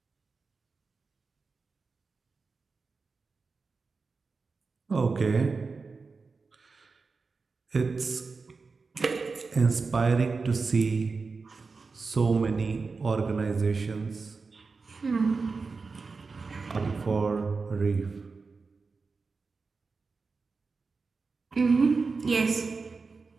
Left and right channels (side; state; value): left; quieter; 4.4 dB